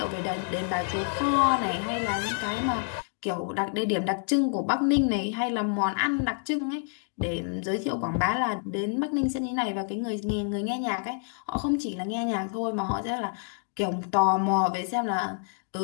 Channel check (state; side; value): silent; right; 58 dB below the other